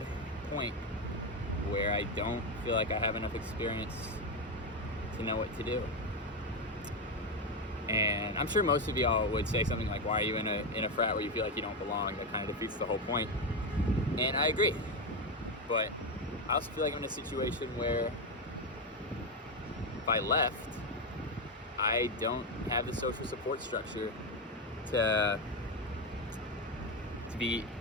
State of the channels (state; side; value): normal; both; correlation 0.10